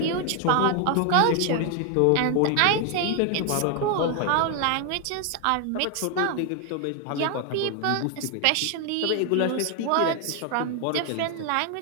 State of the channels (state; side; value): different; both; correlation 0.00